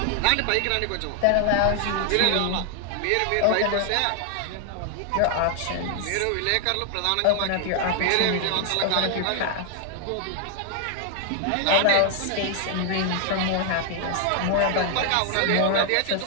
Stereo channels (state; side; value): different; both; correlation 0.00